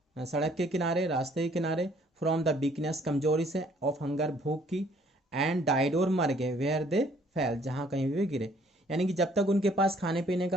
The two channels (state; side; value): normal; both; correlation 0.61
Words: सड़क के किनारे, रास्ते के किनारे। फ्रॉम द वीकनेस, कमजोरी से। ऑफ हंगर, भूख की। एंड डाइड, और मर गए। वेयर दे फेल, जहाँ कहीं भी वे गिरे। यानी कि जब तक उनके पास खाने पीने